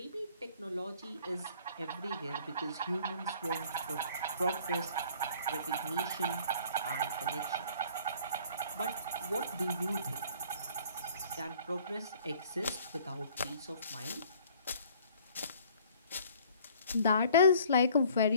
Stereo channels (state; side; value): inverted; both; correlation -0.54